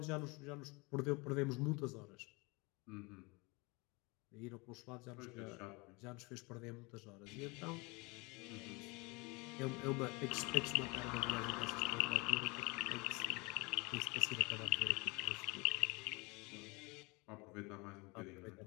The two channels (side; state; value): right; quieter; 26.9 dB